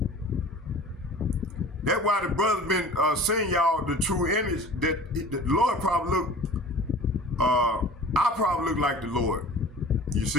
That's why the brother's been saying y'all the true image that the Lord probably look, I probably look like the Lord. You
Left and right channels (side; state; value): both; normal; correlation 0.42